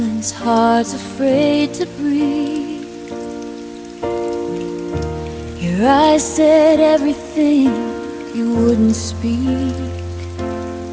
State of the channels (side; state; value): both; identical; correlation 1.00